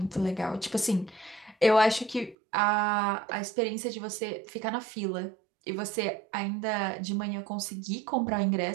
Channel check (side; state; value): left; drops out; at 2.4 s